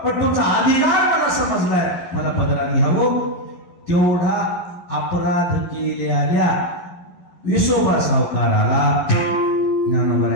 पण तुमचा अधिकार मला समजलाय, मला पदरात घ्यावं. तेवढा अपराध केलेल्या विसोबा सावकाराला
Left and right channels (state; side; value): late; right; 11 ms